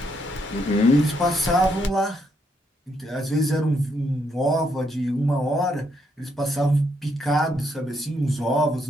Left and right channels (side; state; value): both; normal; correlation 0.75